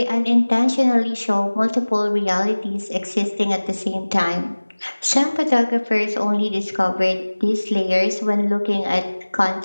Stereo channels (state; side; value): inverted; both; correlation -1.00